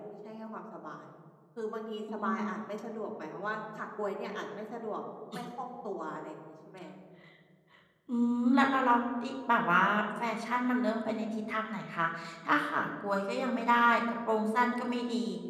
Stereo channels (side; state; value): both; identical; correlation 1.00